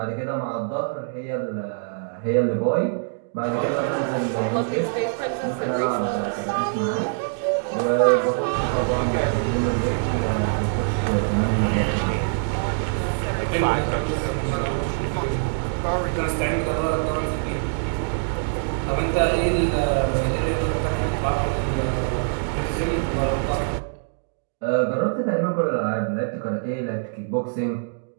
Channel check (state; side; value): silent; left; digital silence